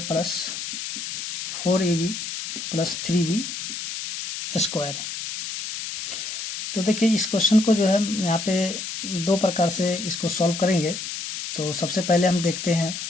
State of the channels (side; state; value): left; noise; hiss, 6 dB below the sound